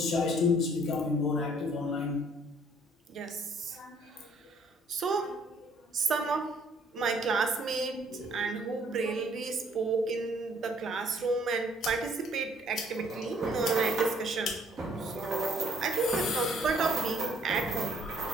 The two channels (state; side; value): normal; both; correlation 0.62